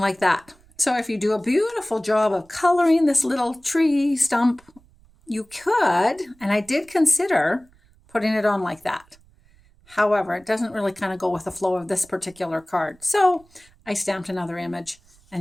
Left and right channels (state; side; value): noise; right; rumble, 29 dB below the sound